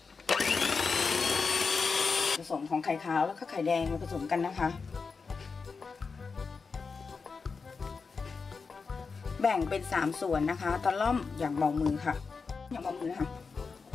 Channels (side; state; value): right; quieter; 4.9 dB